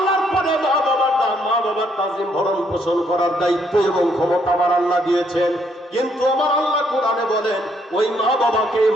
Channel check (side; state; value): both; normal; correlation 0.71